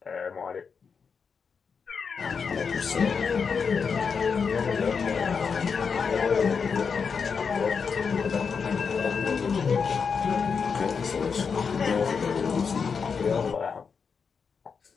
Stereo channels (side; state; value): right; quieter; 5.8 dB